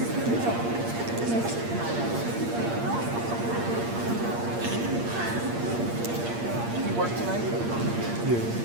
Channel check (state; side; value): late; left; 8.6 ms